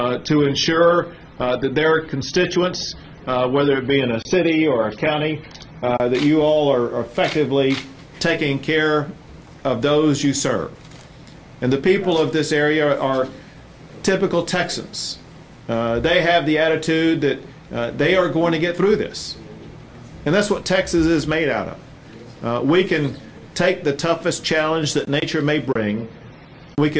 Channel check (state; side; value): identical; both; correlation 1.00